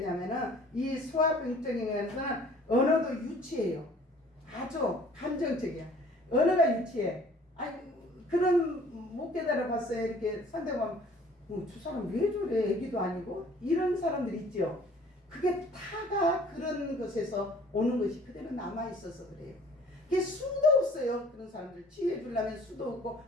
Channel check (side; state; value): both; normal; correlation 0.53